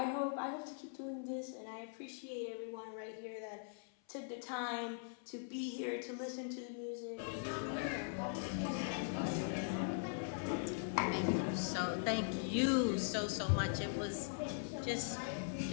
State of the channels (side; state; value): right; silent; 50 dB below the other